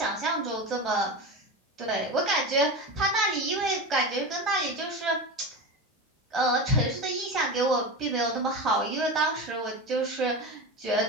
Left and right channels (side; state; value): both; normal; correlation 0.24